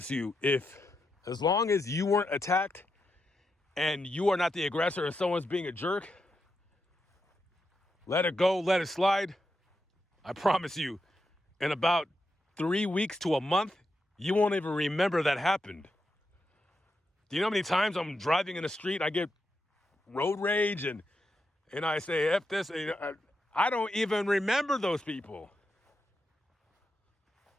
you, as long as you weren't attacked and you are not the aggressor and someone's being a jerk, let it go, let it slide. I promise you, in about 3 weeks to a month, you won't even remember that happened. Do you know how many times I'm driving in the street, I get road rage and I say, F this. I don't even remember those people.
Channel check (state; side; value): normal; both; correlation 0.85